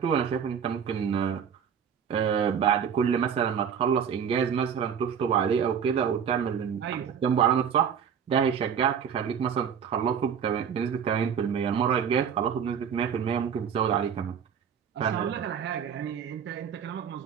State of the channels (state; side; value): quieter; left; 7.6 dB